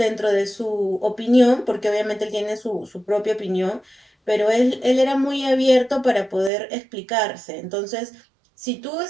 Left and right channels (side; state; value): left; drops out; at 6.5 s